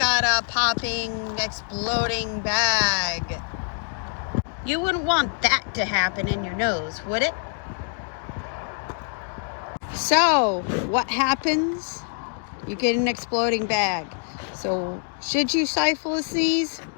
a popping, exploding bag. You wouldn't want that to happen in your nose, would it? So what happens? You get an exploding bag. So should you stifle a sneeze?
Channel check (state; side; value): silent; right; 62 dB below the other